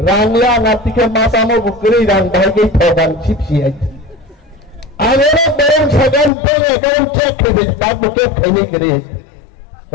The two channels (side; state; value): right; drops out; at 6.3 s